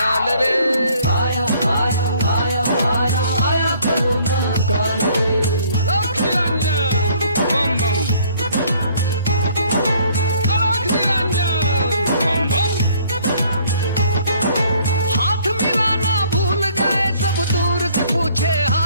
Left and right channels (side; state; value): both; inverted; correlation -0.60